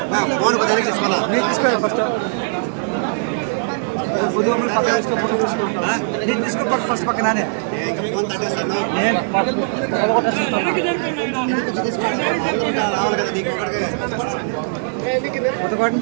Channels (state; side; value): silent; left; digital silence